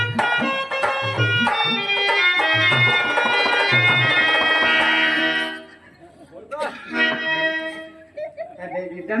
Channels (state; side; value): identical; both; correlation 1.00